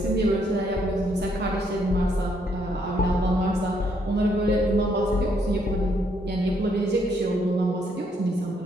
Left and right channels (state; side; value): normal; both; correlation 0.72